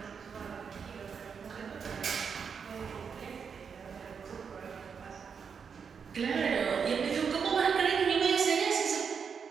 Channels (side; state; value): left; quieter; 6.3 dB